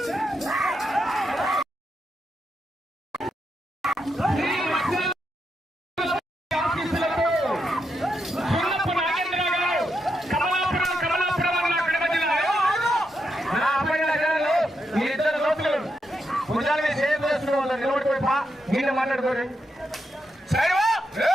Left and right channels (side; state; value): both; normal; correlation 0.83